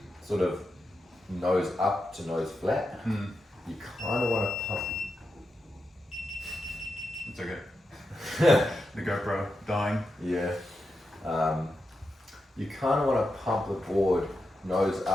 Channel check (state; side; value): normal; both; correlation 0.88